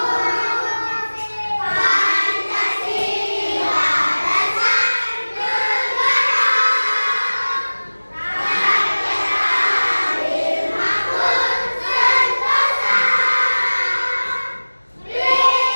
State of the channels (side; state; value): both; inverted; correlation -1.00